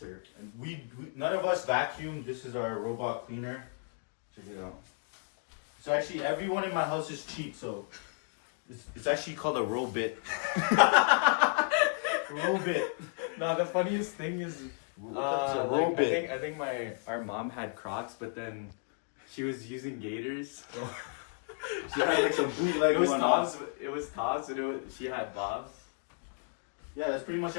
We none of us vacuum. This is our robot cleaner. Check it out. So actually, everyone in my house is cheap. So it's actually called a Robit. Robit. No, the funniest thing is, a Robit. I think our mom had Crocs, but then she was using Gators. She had like some bootleg It was one Taz. on. It was Taz, and she had Bobs. Yeah, that's pretty much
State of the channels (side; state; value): right; silent; 55 dB below the other